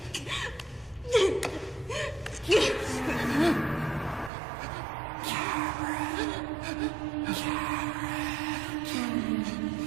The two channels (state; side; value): drops out; left; at 4.3 s